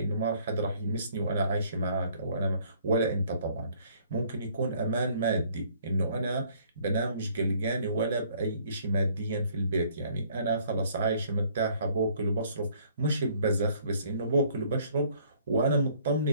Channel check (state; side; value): inverted; both; correlation -0.61